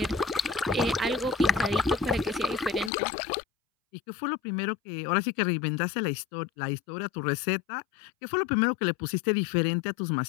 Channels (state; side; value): drops out; right; at 2.9 s